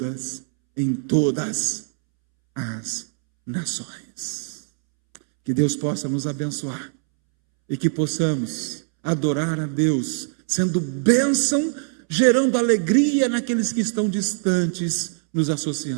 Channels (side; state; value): left; silent; 64 dB below the other